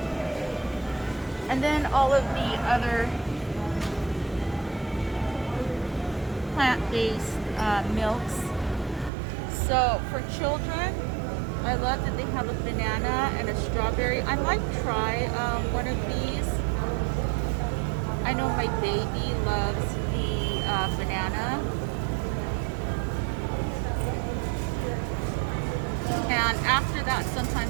And then all of the other plant-based milks. So for children, I love that they have a banana and a strawberry. I might try one of these. I know my baby loves the banana. And after that,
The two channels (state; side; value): drops out; left; at 9.1 s